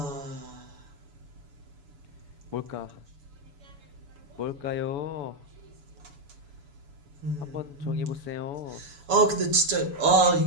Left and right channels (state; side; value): late; left; 7.0 ms